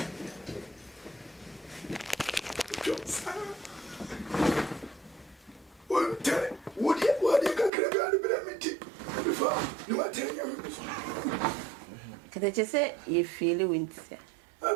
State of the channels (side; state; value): left; drops out; at 7.7 s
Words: Kete che se ye feel winter.